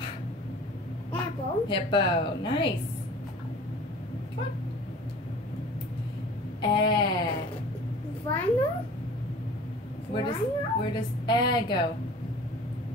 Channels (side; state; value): both; normal; correlation 0.44